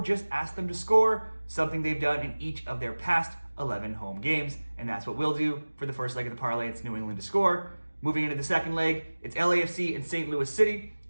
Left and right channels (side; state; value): both; inverted; correlation -1.00